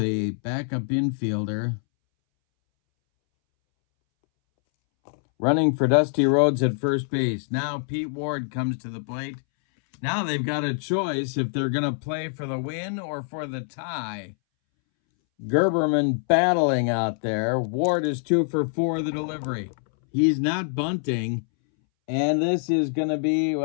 backup infielder. Running for Dusty Rhodes at first base. Now Pete Ward comes to the plate. Now they've got a choice if they're going to play for the win or for the tie. Gerberman battling out there. Ward is 2 for 4 the delivery. He's not bunting. And this is going to be,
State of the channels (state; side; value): silent; right; 62 dB below the other